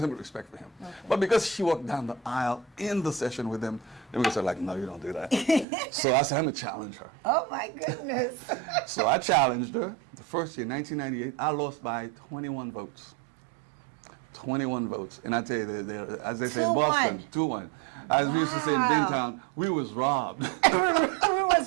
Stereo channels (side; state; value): left; drops out; at 5.7 s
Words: but respect for him. But because she walked down the aisle in the session with him, Democrats are like, no, you don't do that. So I said, I'm going to challenge her. Oh, my goodness. So I challenged her. The first year, 1998, I lost by 21 votes. 21 votes. And I tell you, as they say in Boston, 2-1. As we used to say in Bentown, we was robbed. We